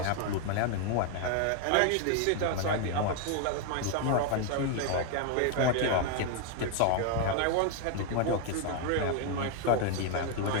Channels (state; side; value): different; both; correlation 0.00